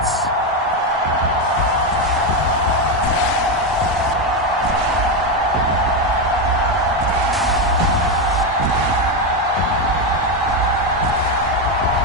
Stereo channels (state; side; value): normal; both; correlation 0.09